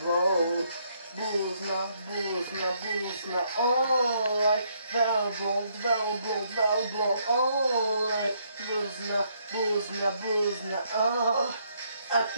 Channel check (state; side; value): inverted; both; correlation -0.72